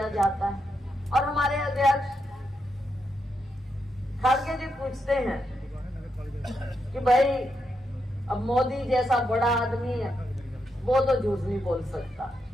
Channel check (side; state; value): both; normal; correlation 0.83